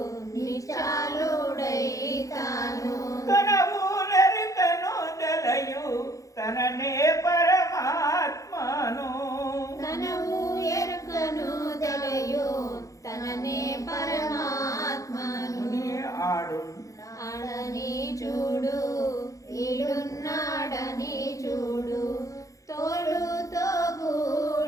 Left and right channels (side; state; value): right; late; 0.16 ms